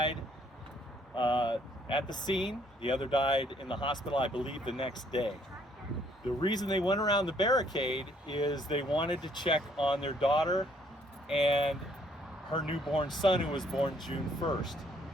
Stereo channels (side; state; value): both; normal; correlation 0.65